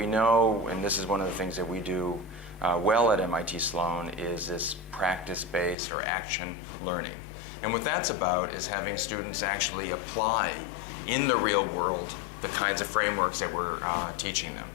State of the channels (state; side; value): drops out; right; at 5.8 s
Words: know, and this is one of the things that we do well at MIT Sloan, is this practice-based or action learning. And what that's about is having students actually apply in the real world the kinds of frameworks that we're teaching them.